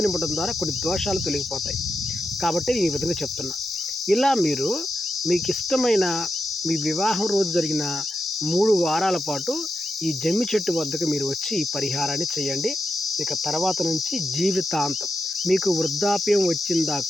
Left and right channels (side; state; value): both; normal; correlation 0.87